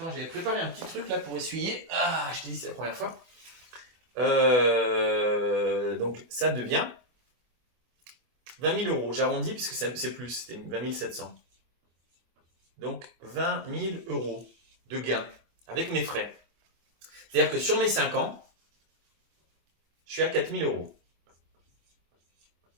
j'avais préparé un petit truc là pour essuyer. Ah, je t'ai dit, c'est la première fois. Donc, ça devient 20 000 euros. J'arrondis puisque c'est plus, c'était 20 700. Donc 20 000 euros de gain avec mes frais. C'est-à-dire que sur mes 5 ans, je suis à 4 000 euros.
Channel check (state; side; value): late; left; 24 ms